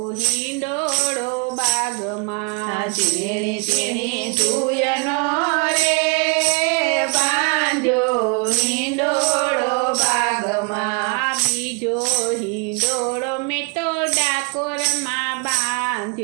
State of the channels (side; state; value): left; quieter; 33.6 dB